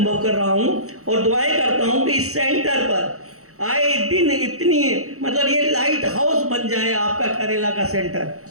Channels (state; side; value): late; left; 0.64 ms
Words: कर रहा हूँ और दुआएं करता हूँ कि इस सेंटर पर आए दिन इतनी मतलब ये लाइट हाउस बन जाए आपका करेला का